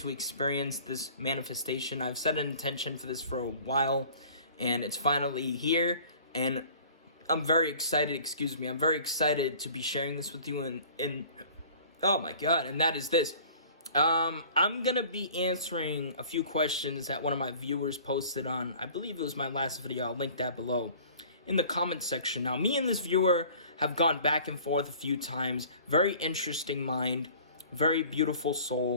experience this manifestation. I've set an intention for this for a while, and it's finally here, and I'm very excited, I'm very excited to be sharing this with you, and oh my god, and that is this. I'm gonna be answering a few questions that one of my viewers posted on, I believe it was my last video, I'll link that below, in the comment section. Now, me and this viewer have gone back and forth a few times. Very interesting mind, very beautiful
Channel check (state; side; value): inverted; both; correlation -0.48